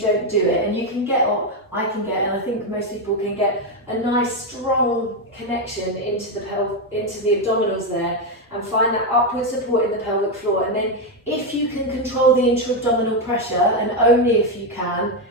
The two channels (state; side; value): normal; both; correlation 0.06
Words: do it. And you can get, or I can get, and I think most people can get a nice strong connection into the abdominals there, and find that upward support in the pelvic floor. And then if you can control the intra-abdominal pressure, and only if you can,